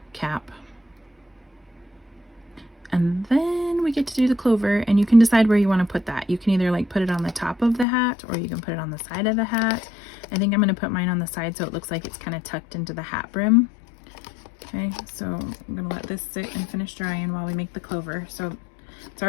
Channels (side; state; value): right; drops out; at 7.9 s